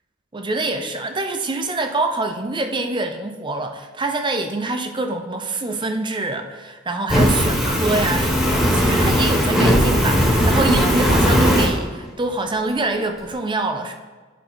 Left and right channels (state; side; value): normal; both; correlation 0.60